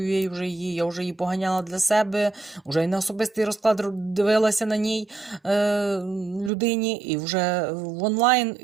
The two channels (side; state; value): left; drops out; at 6.5 s